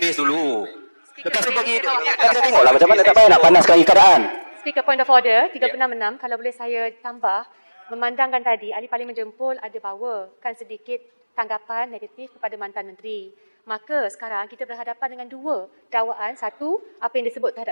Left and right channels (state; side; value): inverted; both; correlation -1.00